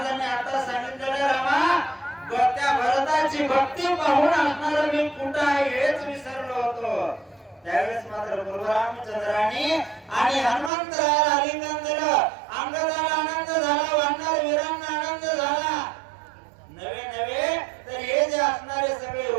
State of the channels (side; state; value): left; drops out; at 10.7 s